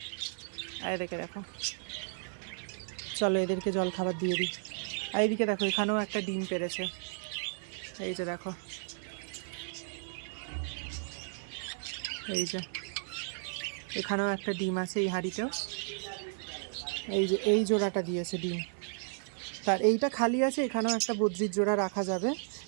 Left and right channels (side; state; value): left; silent; 55 dB below the other